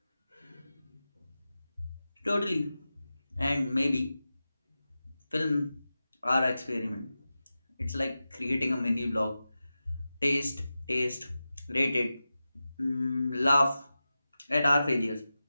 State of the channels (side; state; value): both; inverted; correlation -0.94